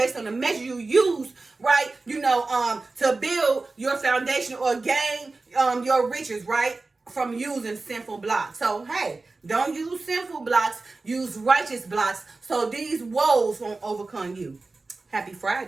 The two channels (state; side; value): quieter; left; 3.6 dB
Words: on the measure you use, right? To build your foundation or gain your riches, right? From using sinful blocks. So hey, don't use sinful blocks, use righteous blocks, so these woes won't overcome you. Happy